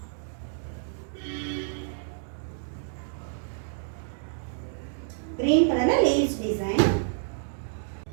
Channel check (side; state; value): left; silent; digital silence